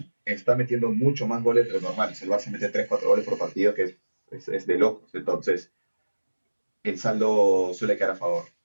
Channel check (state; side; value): inverted; both; correlation -1.00